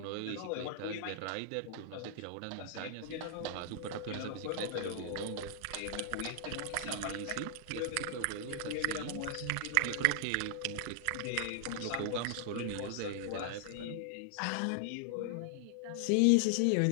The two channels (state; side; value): different; both; correlation 0.00